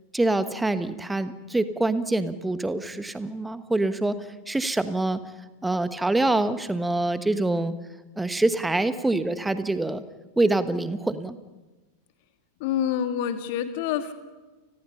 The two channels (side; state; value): both; normal; correlation 0.79